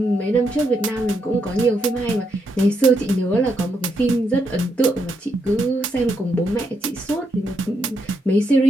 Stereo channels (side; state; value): both; normal; correlation 0.80